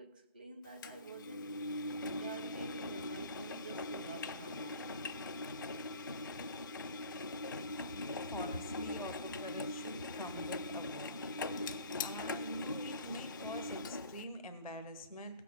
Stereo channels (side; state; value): both; inverted; correlation -0.46